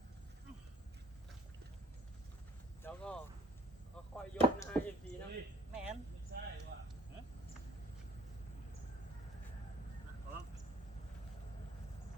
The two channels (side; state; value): both; normal; correlation 0.54